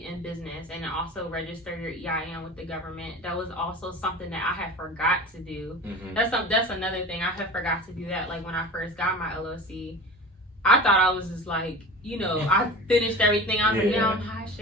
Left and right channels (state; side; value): normal; both; correlation 0.35